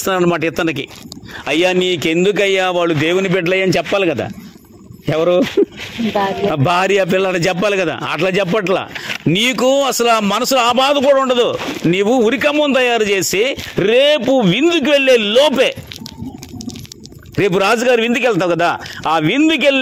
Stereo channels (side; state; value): both; identical; correlation 1.00